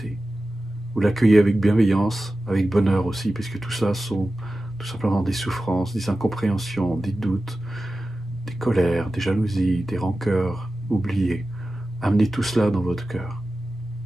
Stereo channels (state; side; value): normal; both; correlation 0.94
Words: Vous l'accueillez avec bienveillance, avec bonheur aussi, puisque tout ça sont tout simplement des souffrances, des incompréhensions, des doutes, des colères, des jalousies, des rancœurs oubliées. Amenez tout cela dans votre cœur.